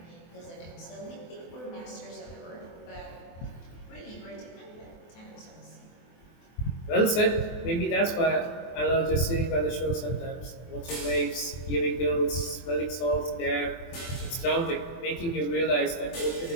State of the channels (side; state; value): right; late; 24 ms